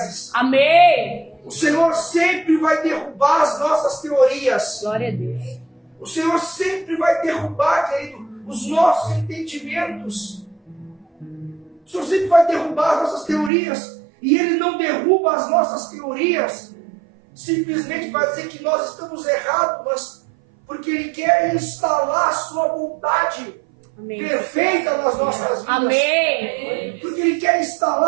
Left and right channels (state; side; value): drops out; left; at 13.5 s